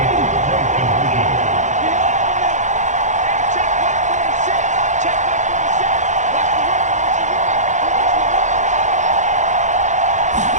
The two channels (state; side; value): late; left; 0.35 ms